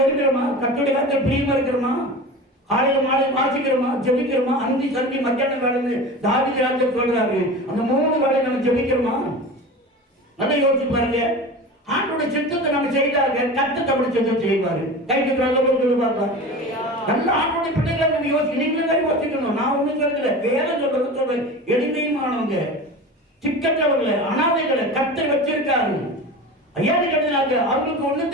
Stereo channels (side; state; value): both; normal; correlation 0.32